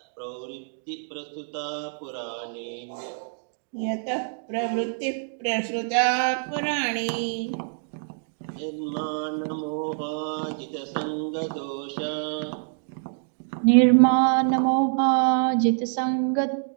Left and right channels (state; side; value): silent; left; digital silence